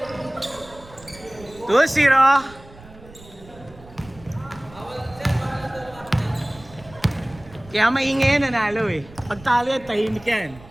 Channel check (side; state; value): right; noise; rumble, 21 dB below the sound